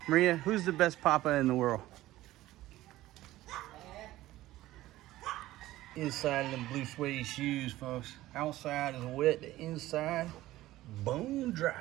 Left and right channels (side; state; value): left; quieter; 16.0 dB